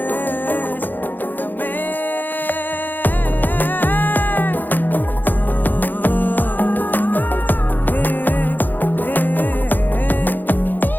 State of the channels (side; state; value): right; late; 0.088 ms